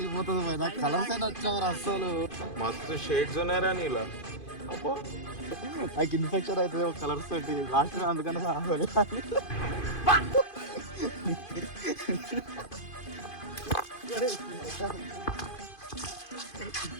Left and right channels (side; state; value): right; late; 2.5 ms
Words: పోయినా, కలర్స్ అయినా వచ్చావు అస్సలు. మస్తు షేడ్స్ ఉన్నాయరా నీలా. నాకు ఇన్ఫెక్షన్ అవుతుంది ఒక కలర్స్ తోటి లాస్ట్ అందుకని